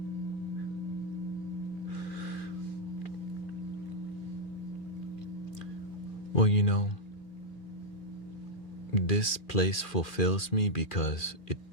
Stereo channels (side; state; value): right; late; 2.4 ms